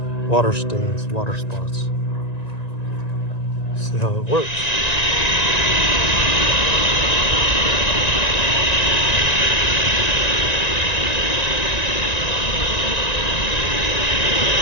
water stains, water spots. See how it works.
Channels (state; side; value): late; right; 1.9 ms